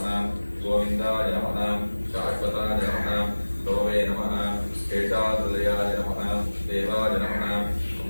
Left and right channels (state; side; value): inverted; both; correlation -1.00